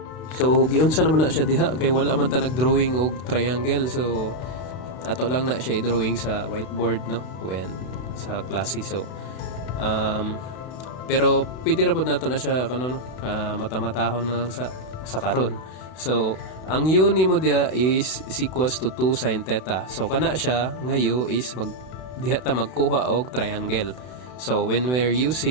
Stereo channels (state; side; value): late; right; 32 ms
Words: So giunsa naman na siya diha, kay wala man ta nagdrawing og triangle, so ato lang na siya i-drawing sa whiteboard when sa klase. So pero pwede ra pud nato na siya mata-matahon na lang sa karon. So ang u nimo diha is equals to 2 sin theta. So kana siya nga u is diha ta magkuha og triangle. So when we're